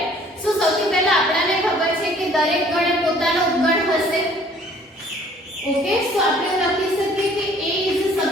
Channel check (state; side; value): normal; both; correlation 0.56